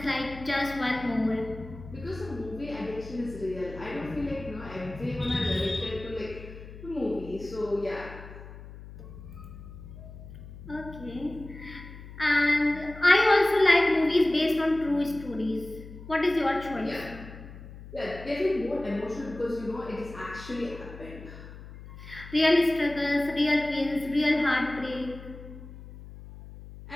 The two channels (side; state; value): left; noise; hum, 15 dB below the sound